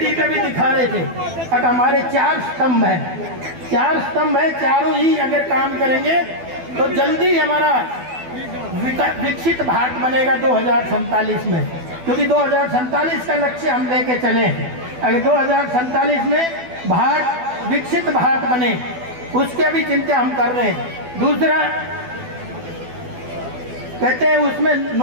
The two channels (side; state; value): left; late; 12 ms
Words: पे भी दिखा रहे थे। अब हमारे 4 स्तंभ हैं, 4 स्तंभ है, चारों ही अगर काम करेंगे तो जल्दी हमारा विकसित भारत बनेगा 2047 में, क्योंकि 2047 का लक्ष्य हम लेके चले। अगर 2047 में भारत विकसित भारत बने उसके भी चिंता हम कर रहे हैं। दूसरा कहते हैं उसमें